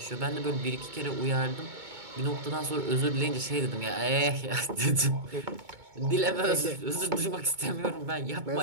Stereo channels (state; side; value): late; left; 2.2 ms